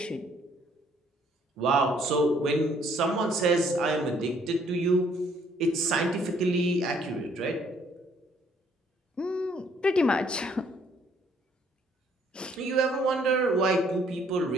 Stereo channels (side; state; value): both; normal; correlation 0.64